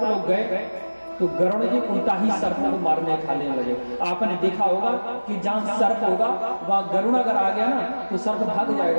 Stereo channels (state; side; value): inverted; both; correlation -1.00